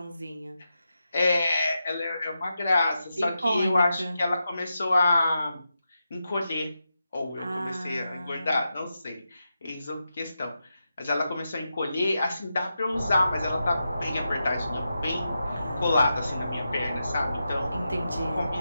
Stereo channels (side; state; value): both; inverted; correlation -0.88